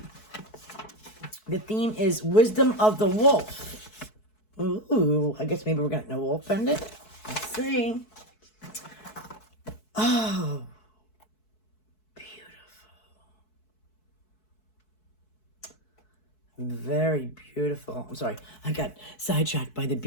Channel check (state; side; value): late; right; 4.6 ms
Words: The theme is Wisdom of the Wolf. Ooh, I guess maybe we're going to know Wolf Pendant. Let's see. Oh, beautiful. Very beautiful. I'm sorry, I got sidetracked by the